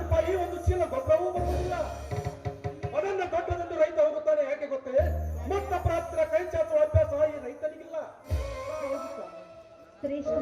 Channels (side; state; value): both; identical; correlation 1.00